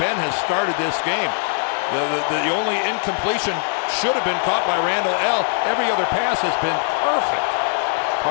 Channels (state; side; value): silent; right; digital silence